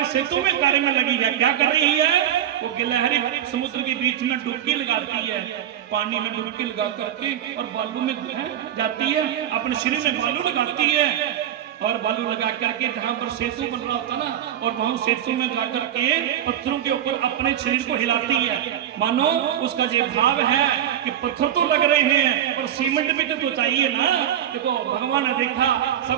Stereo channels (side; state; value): left; quieter; 10.6 dB